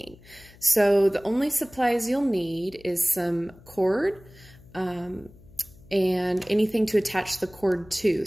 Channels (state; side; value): noise; left; hum, 24 dB below the sound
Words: So the only supplies you'll need is some cord, and anything to attach the cord to.